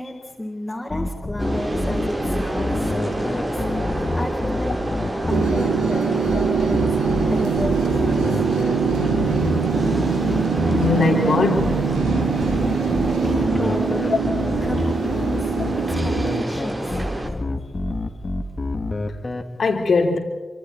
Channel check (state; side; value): normal; both; correlation 0.79